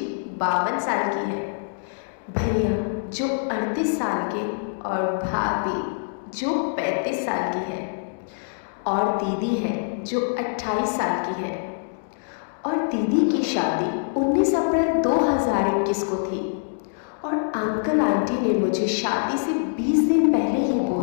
52 साल की है, भैया जो 38 साल के और भाभी जो 35 साल की है, और दीदी है जो 28 साल की है। और दीदी की शादी 19 अप्रैल 2021 को थी। और अंकल आंटी ने मुझे शादी से 20 दिन पहले ही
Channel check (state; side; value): silent; right; digital silence